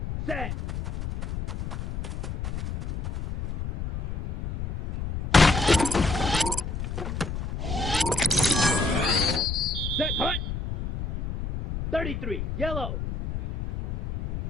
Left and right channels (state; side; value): noise; left; rumble, 5 dB below the sound